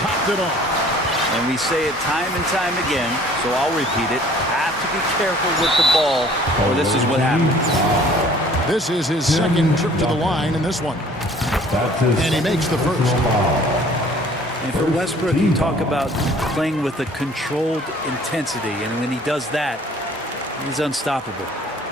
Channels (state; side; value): normal; both; correlation 0.53